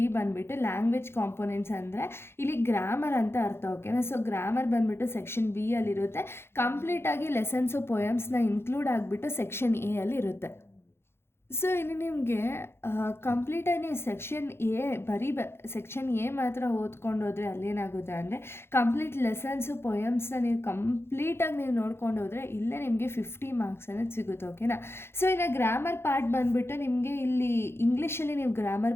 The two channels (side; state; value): right; late; 0.12 ms